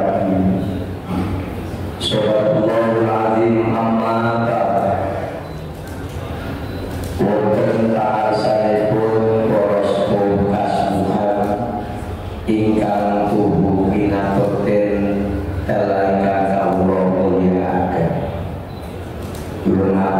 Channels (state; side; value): identical; both; correlation 1.00